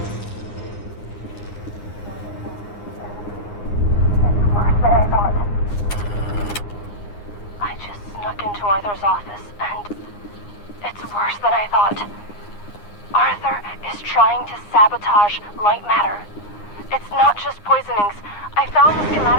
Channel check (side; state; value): right; late; 9.7 ms